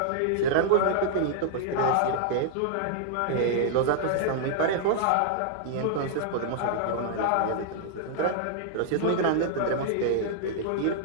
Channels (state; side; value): different; both; correlation -0.01